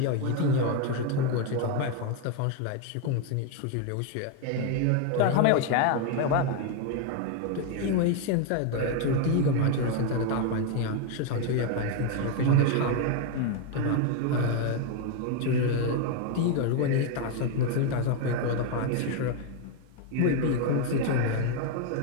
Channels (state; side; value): different; both; correlation 0.01